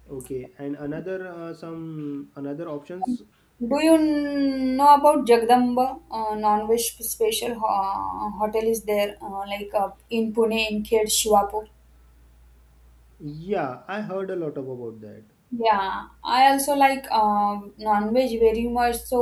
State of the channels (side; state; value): both; identical; correlation 1.00